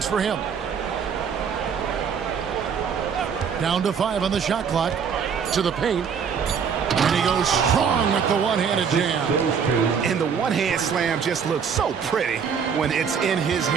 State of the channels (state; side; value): quieter; left; 6.8 dB